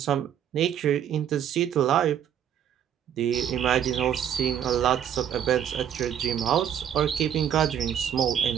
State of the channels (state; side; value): quieter; left; 9.5 dB